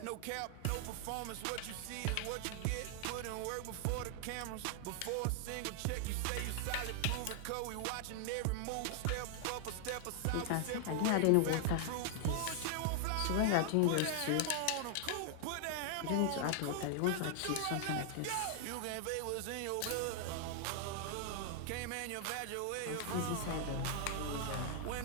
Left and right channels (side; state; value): both; different; correlation 0.00